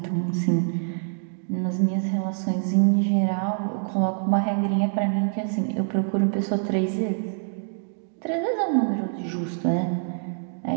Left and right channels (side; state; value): left; silent; digital silence